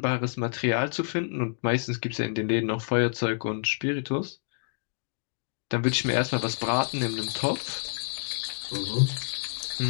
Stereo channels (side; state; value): right; silent; digital silence